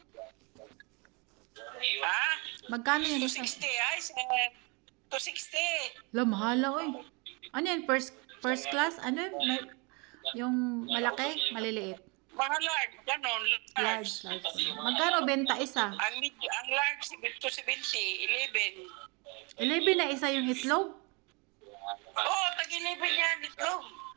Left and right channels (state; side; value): quieter; left; 30.4 dB